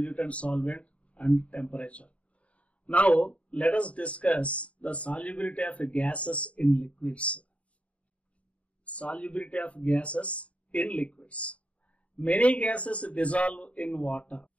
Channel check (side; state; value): right; late; 0.065 ms